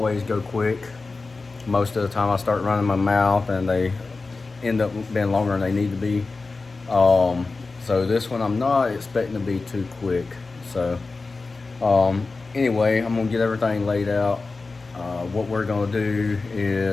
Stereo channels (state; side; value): quieter; right; 3.8 dB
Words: go quick. Most of the time I start running my mouth and they end up being longer than they need to be. So this one I'm not expecting to be too quick. So anyway, I'm gonna get everything laid out. What we're gonna do